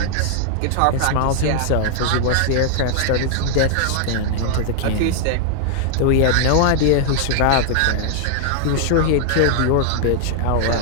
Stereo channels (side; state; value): both; different; correlation -0.01